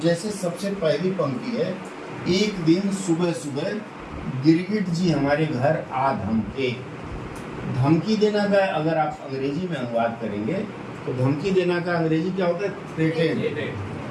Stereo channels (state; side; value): identical; both; correlation 1.00